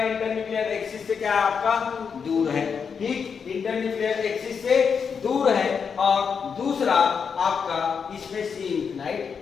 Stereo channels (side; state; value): right; quieter; 6.3 dB